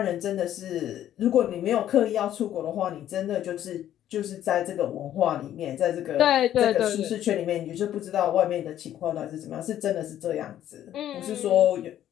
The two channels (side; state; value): right; quieter; 11.6 dB